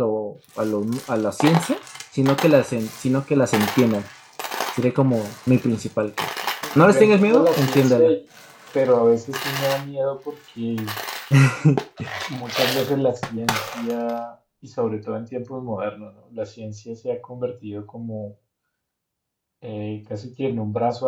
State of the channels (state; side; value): identical; both; correlation 1.00